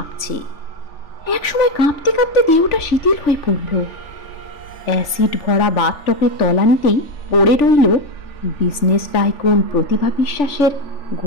একসময় কাঁপতে কাঁপতে দেহটা শিথিল হয়ে পড়ল। অ্যাসিড ভরা বাথটবের তলানিতেই পড়ে রইল বিজনেস টাইকুন প্রতিভা বিশ্বাসের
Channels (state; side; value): late; right; 3.4 ms